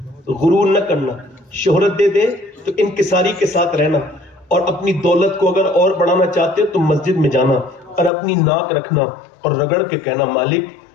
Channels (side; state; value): right; drops out; at 8.1 s